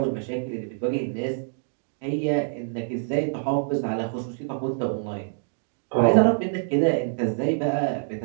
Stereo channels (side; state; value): left; silent; digital silence